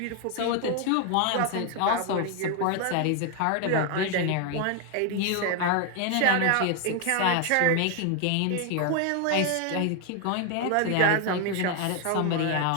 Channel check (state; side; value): different; both; correlation 0.01